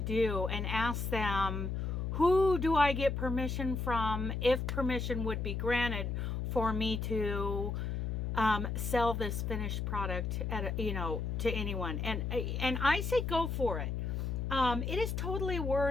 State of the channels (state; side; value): noise; left; hum, 2 dB below the sound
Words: do, and ask them, who do I get permission from, if permission would be granted for me to sell this finished product at you know, to anyone. And I say go for it. It is totally